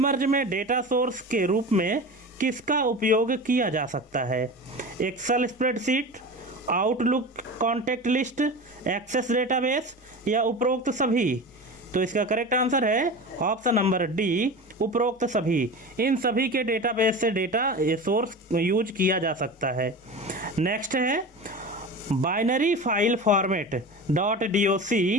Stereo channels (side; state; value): both; normal; correlation 0.31